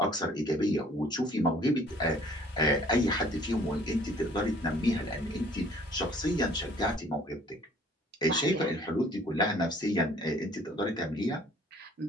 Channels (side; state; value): both; normal; correlation 0.56